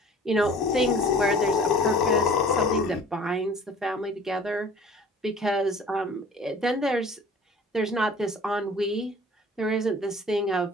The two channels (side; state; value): both; normal; correlation 0.47